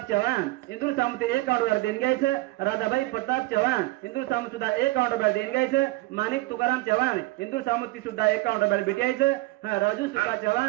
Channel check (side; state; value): left; quieter; 20.1 dB